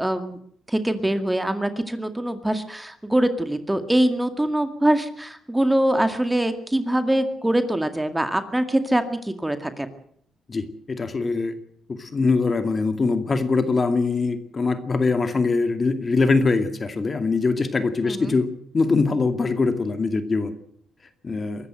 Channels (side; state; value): both; normal; correlation 0.93